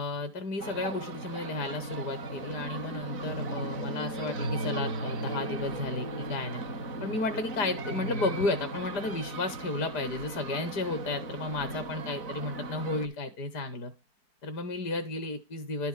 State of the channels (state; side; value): late; right; 4.9 ms